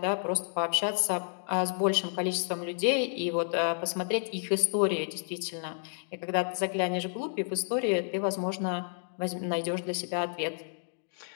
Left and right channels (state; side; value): silent; right; digital silence